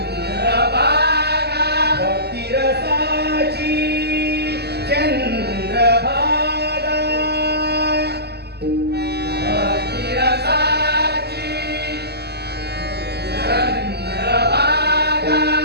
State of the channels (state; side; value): late; left; 0.47 ms